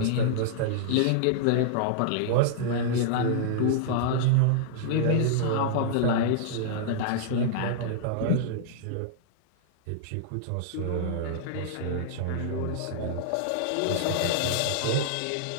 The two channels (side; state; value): both; different; correlation -0.02